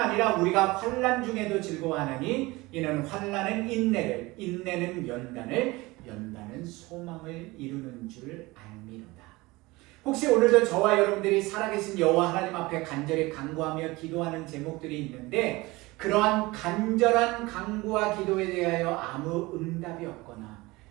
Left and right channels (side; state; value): left; quieter; 21.7 dB